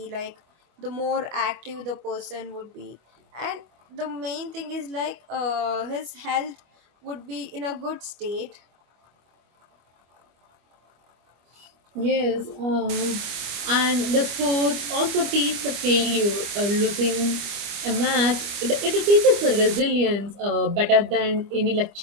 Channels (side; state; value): left; late; 25 ms